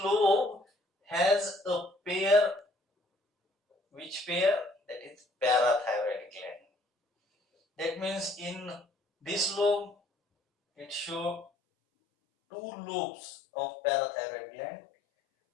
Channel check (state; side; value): drops out; right; at 11.5 s